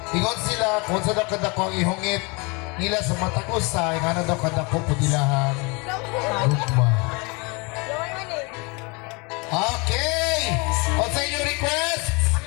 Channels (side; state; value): right; quieter; 29.2 dB